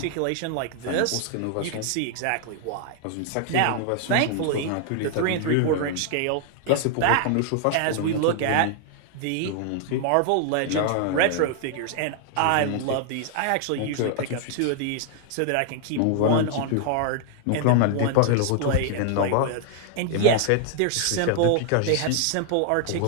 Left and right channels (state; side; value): different; both; correlation 0.00